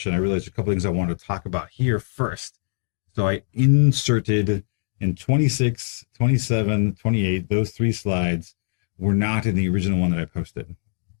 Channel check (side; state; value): right; silent; digital silence